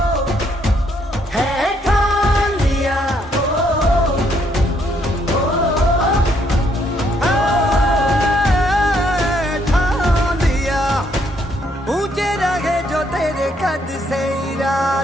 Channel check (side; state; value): both; normal; correlation 0.70